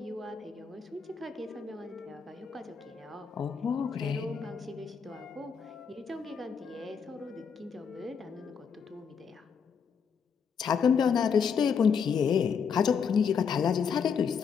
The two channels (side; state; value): right; quieter; 6.4 dB